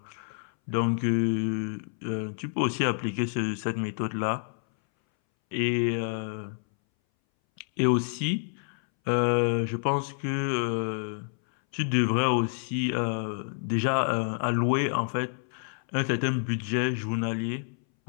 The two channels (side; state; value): right; silent; 59 dB below the other